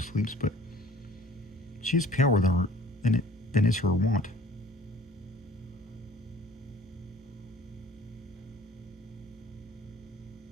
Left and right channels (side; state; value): both; normal; correlation 0.52